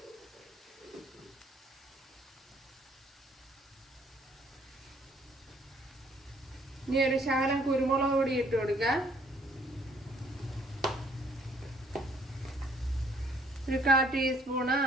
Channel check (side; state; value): both; normal; correlation 0.63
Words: ഇനി ഒരു ശകലം കുരുമുളക് പൊടി ഇട്ട് കൊടുക്കുക. ഒരു 1/4 ടീസ്പൂണ്